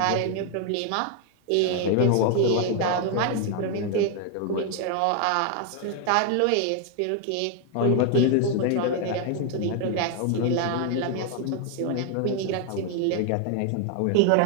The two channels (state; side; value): different; both; correlation 0.00